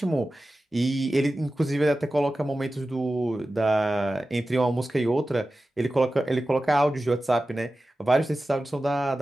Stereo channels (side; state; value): both; normal; correlation 0.94